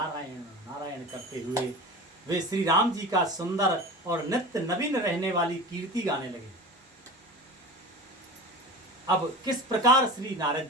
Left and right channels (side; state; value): both; normal; correlation 0.33